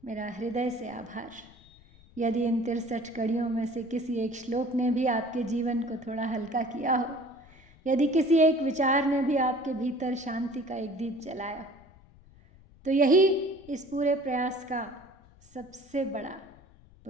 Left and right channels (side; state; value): left; noise; rumble, 25 dB below the sound